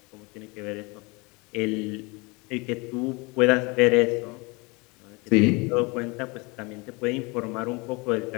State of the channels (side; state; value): right; quieter; 27.4 dB